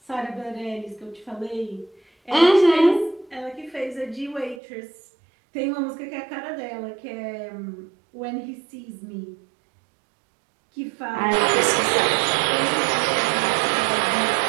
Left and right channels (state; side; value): drops out; left; at 4.6 s